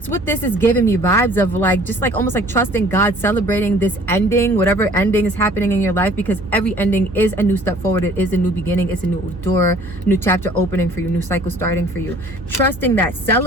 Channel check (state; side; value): normal; both; correlation 0.53